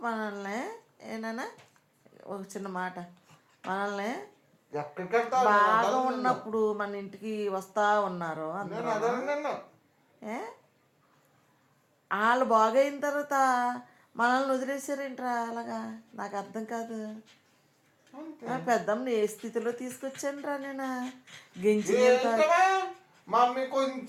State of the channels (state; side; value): identical; both; correlation 1.00